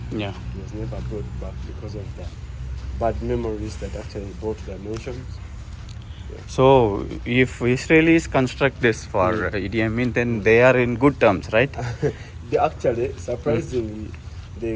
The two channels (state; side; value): identical; both; correlation 1.00